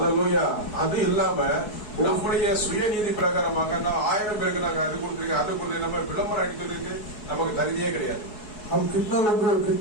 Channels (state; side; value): late; right; 4.7 ms